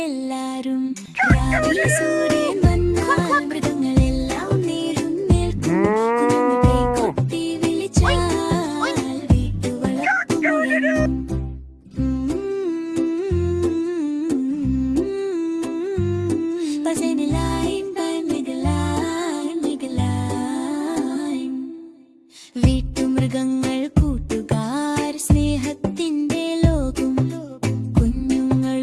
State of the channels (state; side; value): identical; both; correlation 1.00